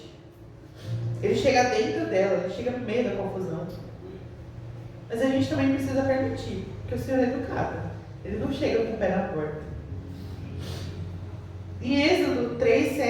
Ele chega dentro dela, Ele chega no meio da confusão. Mas a gente também precisa permitir, porque o Senhor é educado. Ele não chega com o pé na porta. Em Êxodo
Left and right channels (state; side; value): identical; both; correlation 1.00